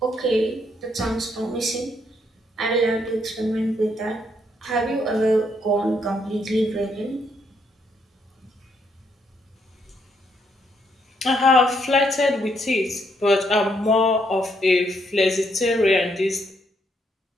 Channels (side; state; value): both; normal; correlation 0.74